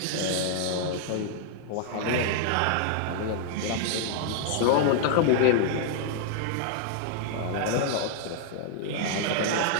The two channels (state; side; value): different; both; correlation -0.01